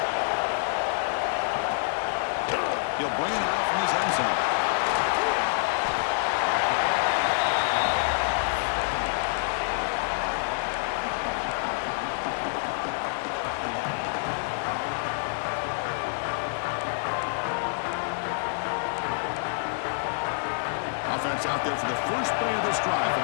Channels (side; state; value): right; silent; digital silence